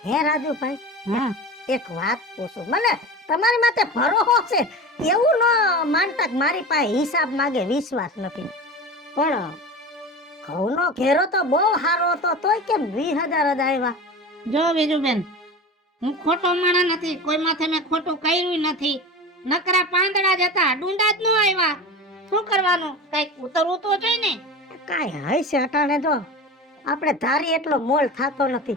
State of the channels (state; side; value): normal; both; correlation 0.30